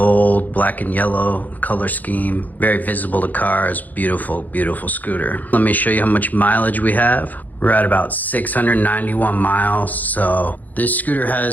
black and yellow color scheme. Very visible to cars. Beautiful, beautiful scooter. Let me show you how much mileage we have. We're at about 691 miles. So this scooter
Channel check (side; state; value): right; late; 0.082 ms